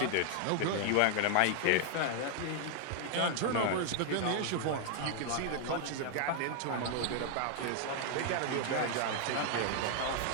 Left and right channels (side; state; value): both; different; correlation 0.00